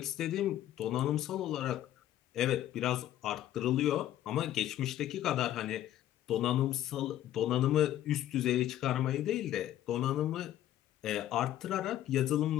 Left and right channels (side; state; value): right; quieter; 12.6 dB